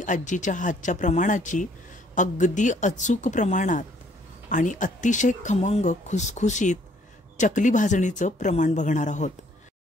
आजीच्या हातच्या प्रमाणाची अगदी अचूक प्रमाणात आणि अतिशय खमंग खुसखुशीत चकली भाजणीचं प्रमाण बघणार आहोत.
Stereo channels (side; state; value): both; normal; correlation 0.63